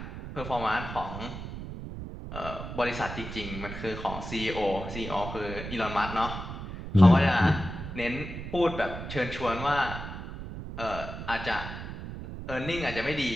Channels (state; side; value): noise; right; rumble, 8 dB below the sound